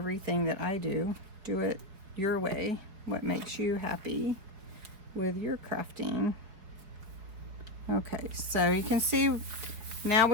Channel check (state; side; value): late; left; 4.8 ms